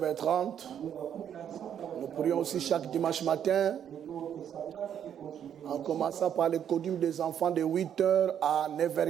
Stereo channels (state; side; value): quieter; left; 9.2 dB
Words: Nous prions aussi chaque dimanche matin, en commençant par le codium des enfants de 8h à